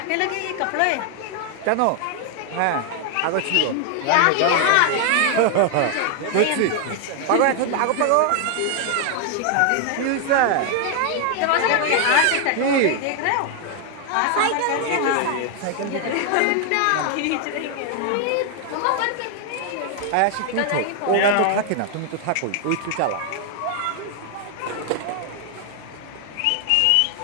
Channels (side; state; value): both; different; correlation 0.00